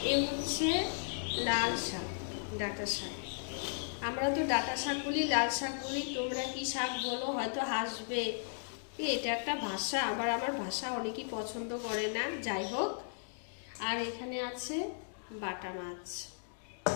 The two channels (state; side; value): silent; right; digital silence